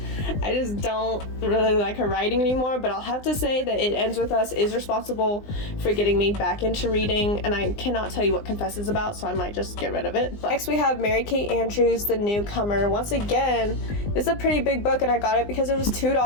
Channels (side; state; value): right; late; 20 ms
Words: I just don't really like her writing anymore, but I'll have to say that It Ends With Us is responsible for getting me back into reading, and I cannot tell you what Confess is about, so I might just get rid of it. But next we have Mary Kate Andrews, The Newcomer. Once again, this is a pretty big book, and I got it because it was